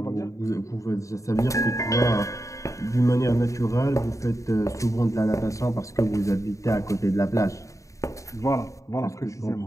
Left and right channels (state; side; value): late; right; 0.16 ms